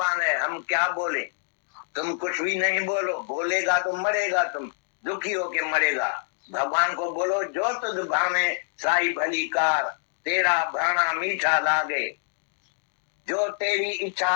है, हम क्या बोले। तुम कुछ भी नहीं बोलो, बोलेगा तो मरेगा, तुम दुखी होके मरेगा। भगवान को बोलो जो तुझ भावे साई भली कार, तेरा भाना मीठा लागे, जो तेरी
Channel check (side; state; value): right; silent; digital silence